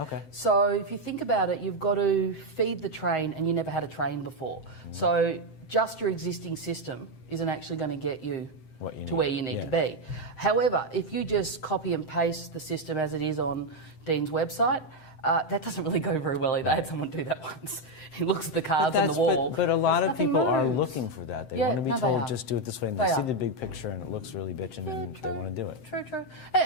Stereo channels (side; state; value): right; late; 7.7 ms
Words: So if you think about it, you've got to feed the train, and you never had a train before. So just your existing system isn't actually going to get you to where you need to be. However, if you just copy and paste the system as it is on Dean's website, that doesn't really go very well either. I had someone do that once. He looks at the cards on the wall. But a lot of people are looking for that. They want to be told, just do it this way, and they see the big picture and it looks really bitchin' and they want to do it. True.